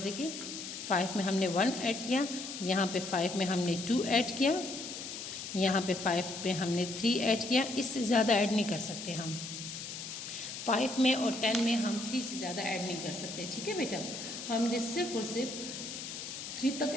देखिए 5 में हमने 1 ऐड किया, यहाँ पे 5 में हमने 2 ऐड किया, यहाँ पे 5 पे हमने 3 ऐड किया। इससे ज़्यादा ऐड नहीं कर सकते हम, 5 में और 10 में हम 3 से ज़्यादा ऐड नहीं कर सकते, ठीक है बेटा। हमने सिर्फ और सिर्फ 3 तक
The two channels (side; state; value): left; noise; hiss, 8 dB below the sound